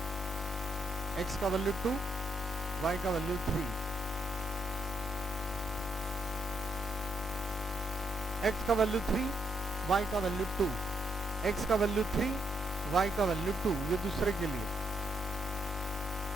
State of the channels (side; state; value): both; normal; correlation 0.77